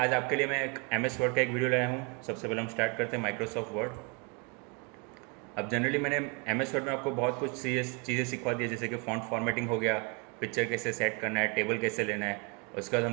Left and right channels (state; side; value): quieter; left; 32.8 dB